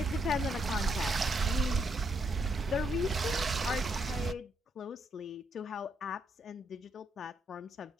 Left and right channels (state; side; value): normal; both; correlation 0.77